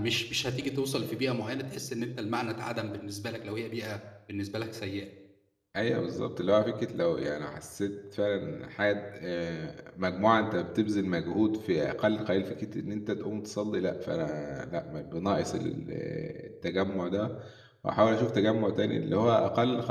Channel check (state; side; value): identical; both; correlation 1.00